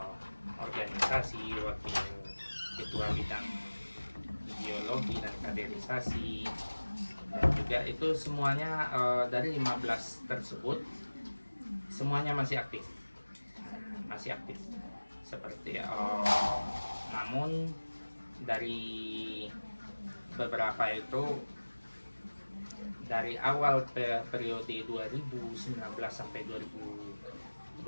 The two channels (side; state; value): both; inverted; correlation -1.00